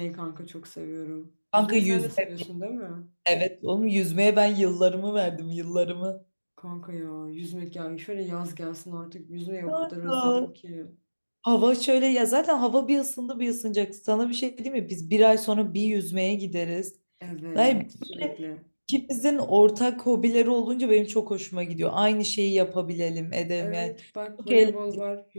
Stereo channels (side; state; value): both; inverted; correlation -1.00